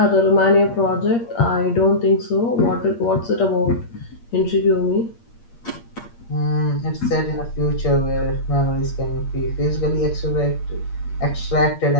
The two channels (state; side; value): late; right; 8.6 ms